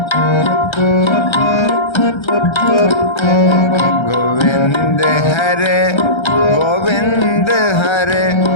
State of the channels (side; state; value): right; late; 1.3 ms